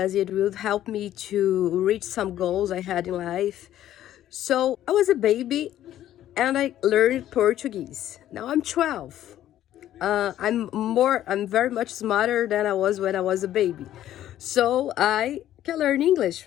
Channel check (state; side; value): quieter; right; 12.4 dB